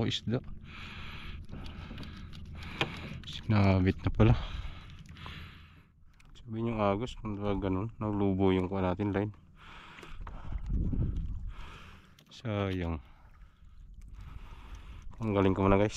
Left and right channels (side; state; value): both; identical; correlation 1.00